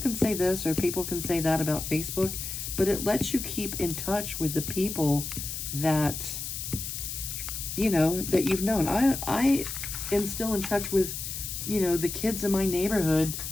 say this or people can say that about Facebook, but it lets you keep in touch with the people that, that you've known. I am still in touch with, the kids in my neighborhood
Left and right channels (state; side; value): noise; left; hiss, 6 dB below the sound